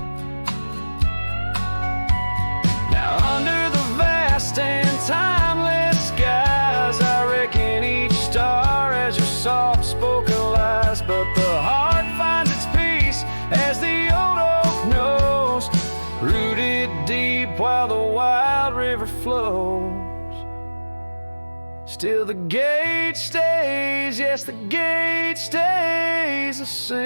Now under the vast and timeless skies, I reckon each star has your soft-spoken lies, but the heart finds its peace as the old oak knows, rooted deep while the wild river flows. Still the gate stays, yes the gate stays, a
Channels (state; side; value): inverted; both; correlation -1.00